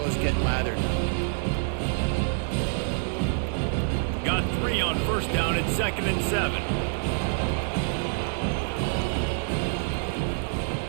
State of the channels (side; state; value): left; silent; 60 dB below the other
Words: get lathered. Got 3 on first down at 2nd and 7.